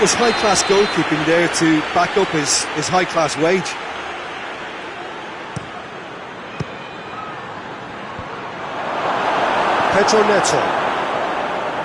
high-class goalkeeping there to back up his high-class wage. Pedro Neto.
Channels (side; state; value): both; identical; correlation 1.00